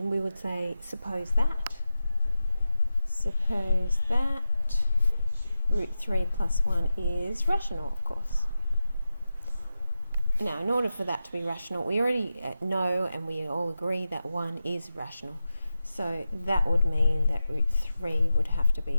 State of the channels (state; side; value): inverted; both; correlation -0.91